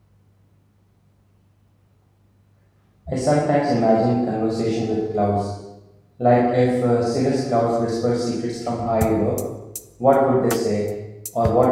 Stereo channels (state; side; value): identical; both; correlation 1.00